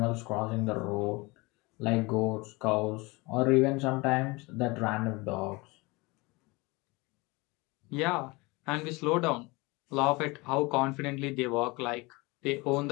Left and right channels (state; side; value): quieter; right; 24.8 dB